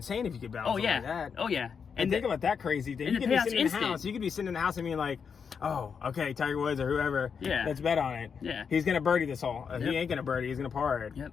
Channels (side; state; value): right; quieter; 6.4 dB